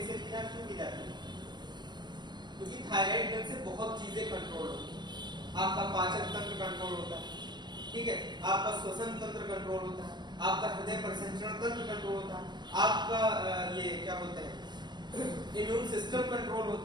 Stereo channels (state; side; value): late; left; 0.21 ms